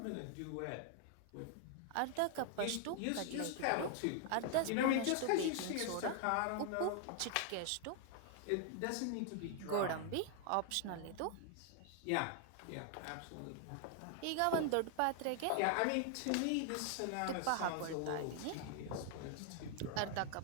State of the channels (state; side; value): different; both; correlation 0.00